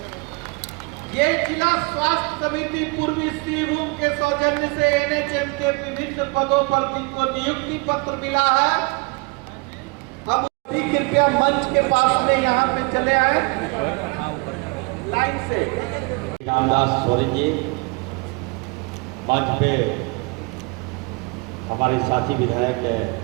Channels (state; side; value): quieter; left; 28.9 dB